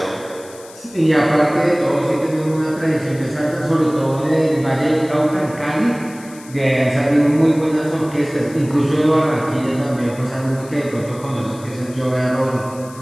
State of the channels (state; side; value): noise; left; hiss, 21 dB below the sound